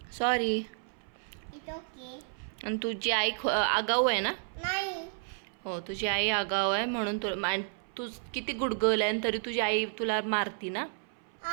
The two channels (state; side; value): silent; left; 57 dB below the other